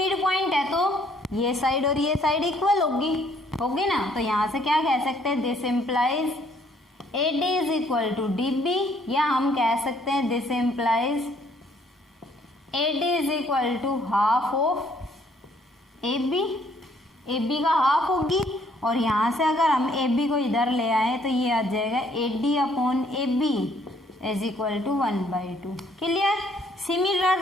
पॉइंट है तो ये साइड और ये साइड इक्वल होगी ना। तो यहाँ से क्या कह सकते हैं, this implies A D is equal to D B, या हम कह सकते हैं this implies A D is equal to half of A B का हाफ होगी। और यहाँ से अगर हम ए बी को इधर ले आए तो ये आ जाएगा A D upon A B is equal to 1/2। Clear.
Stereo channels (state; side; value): normal; both; correlation 0.64